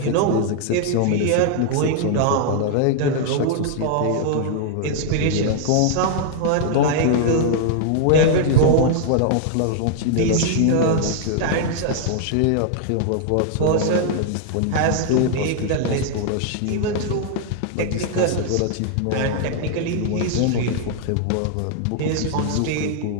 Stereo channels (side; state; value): both; different; correlation -0.01